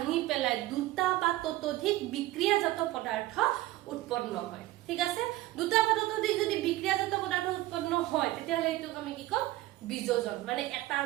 পেলাই দুটা বা ততোধিক বিক্ৰিয়াজাত পদাৰ্থ উৎপন্ন হয় ঠিক আছে দুটা বা ততোধিক যদি বিক্ৰিয়াজাত পদাৰ্থ উৎপন্ন হয় তেতিয়াহলে এইটো আমি কি কম বিযোজন মানে এটাৰ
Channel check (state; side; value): quieter; left; 17.1 dB